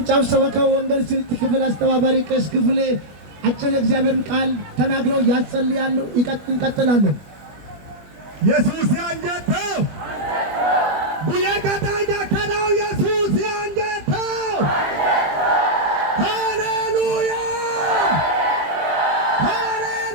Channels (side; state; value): left; late; 21 ms